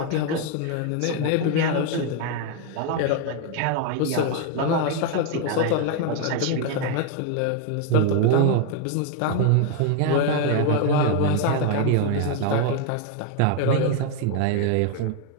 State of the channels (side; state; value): both; different; correlation 0.01